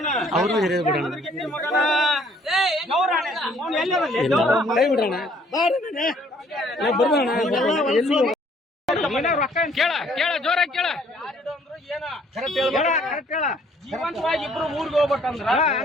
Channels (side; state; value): both; normal; correlation 0.61